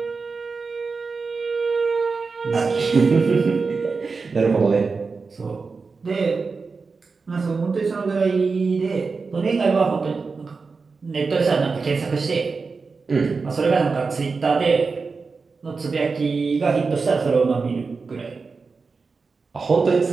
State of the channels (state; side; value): quieter; left; 4.5 dB